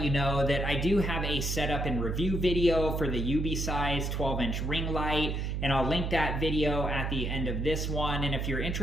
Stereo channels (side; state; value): right; noise; hum, 1 dB below the sound